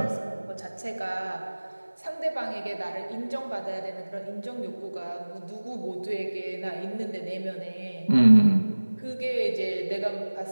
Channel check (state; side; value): inverted; both; correlation -1.00